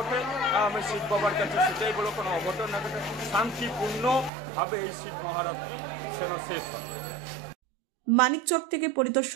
আমি শিব বাবার কাছে সেটাই বলো, কোনো অঘটন না ঘটে, শান্তিপূর্ণভাবে এই শিব মহারাত্রি সেন শেষ হয়। মানিকচক থেকে পরিতোষ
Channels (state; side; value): drops out; left; at 4.3 s